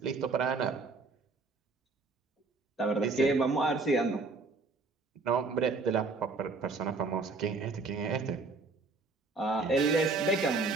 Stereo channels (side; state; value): left; quieter; 3.9 dB